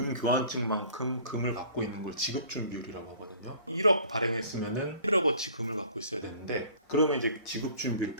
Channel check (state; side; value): inverted; both; correlation -0.50